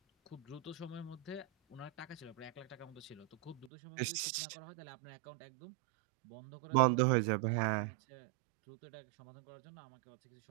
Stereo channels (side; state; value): left; drops out; at 3.7 s